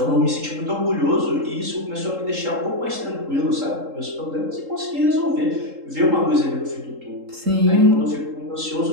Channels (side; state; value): left; late; 3.7 ms